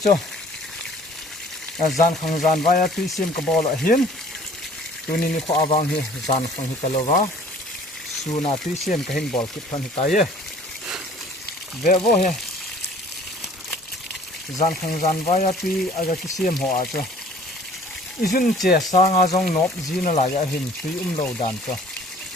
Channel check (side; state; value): both; normal; correlation 0.52